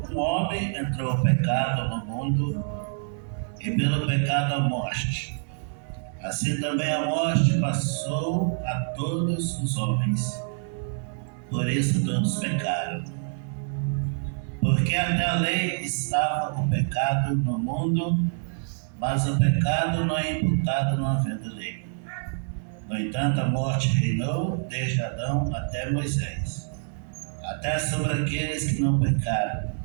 um homem entrou o pecado no mundo, e pelo pecado a morte, assim também a morte passou a todos os homens. Por isso todos pecaram. Porque até a lei estava o pecado no mundo, mas o pecado não é imputado não havendo lei. No entanto, a morte reinou desde Adão até Moisés, até sobre aqueles que não pecaram,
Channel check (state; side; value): silent; left; 61 dB below the other